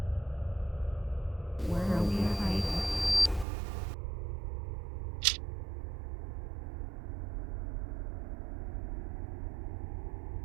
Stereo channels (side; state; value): left; drops out; at 3.5 s